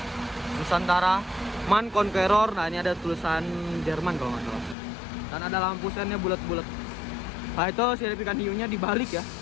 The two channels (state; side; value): drops out; right; at 4.8 s